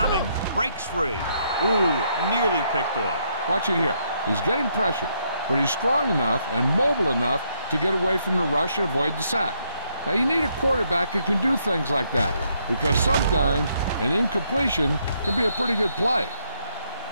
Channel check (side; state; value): both; inverted; correlation -0.74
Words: Breaks free. Ooh, nearly picked off. Watch it here. He's getting pressure, but he's strong enough and mobile enough to get away from the rush and avoid the sack. Now, you need a quarterback who can do things like that, because sometimes an incompletion can be a pretty good play.